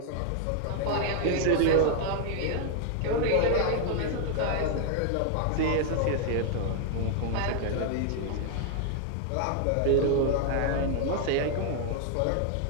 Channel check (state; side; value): different; both; correlation 0.00